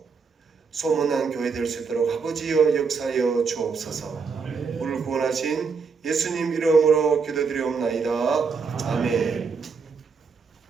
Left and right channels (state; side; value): quieter; left; 5.3 dB